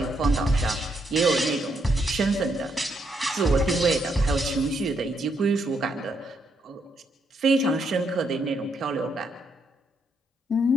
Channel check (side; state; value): both; normal; correlation 0.76